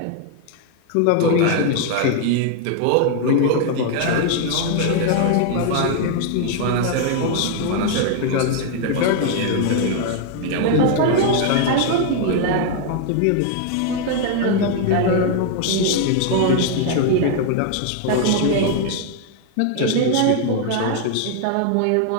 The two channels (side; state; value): both; different; correlation 0.00